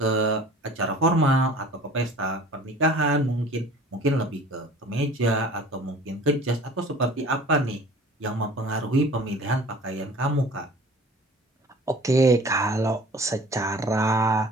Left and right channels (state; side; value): normal; both; correlation 0.46